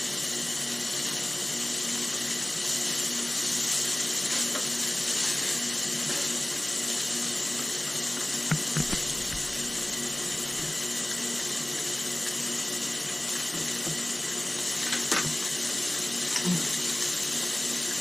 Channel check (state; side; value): noise; right; rumble, 27 dB below the sound